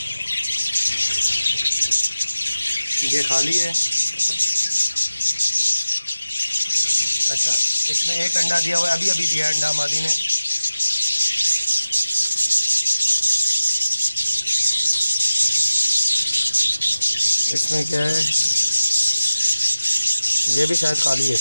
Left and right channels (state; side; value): inverted; both; correlation -0.95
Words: ये खाली है। अच्छा, इसमें 1 अंडा दिया हुआ है, अभी अभी दिया अंडा मादी ने। इसमें क्या है, ये भी शायद खाली है।